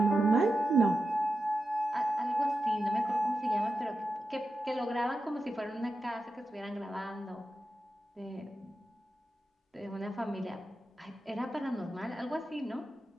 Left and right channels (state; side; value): normal; both; correlation 0.90